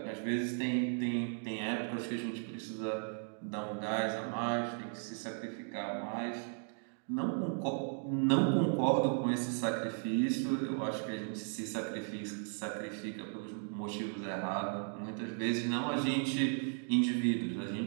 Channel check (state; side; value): silent; left; 54 dB below the other